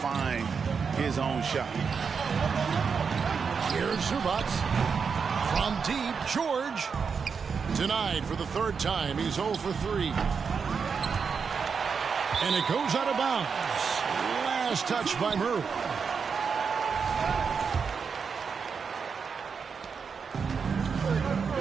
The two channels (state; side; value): quieter; left; 5.9 dB